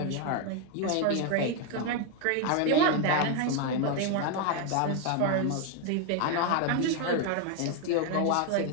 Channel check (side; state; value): both; different; correlation 0.01